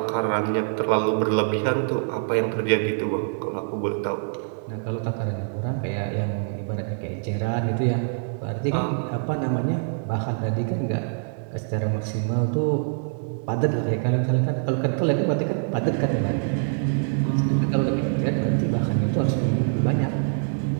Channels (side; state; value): left; silent; digital silence